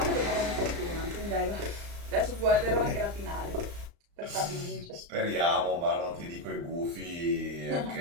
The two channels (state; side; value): late; left; 35 ms